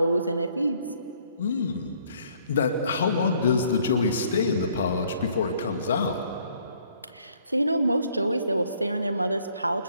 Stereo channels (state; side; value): inverted; both; correlation -0.63